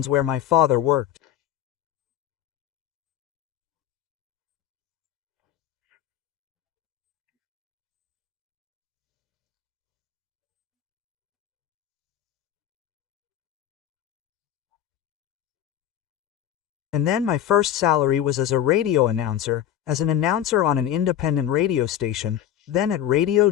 where my father worked. And then my first salary was as a radio announcer, as an announcer on an independent radio station, then at Radio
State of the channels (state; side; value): quieter; right; 11.0 dB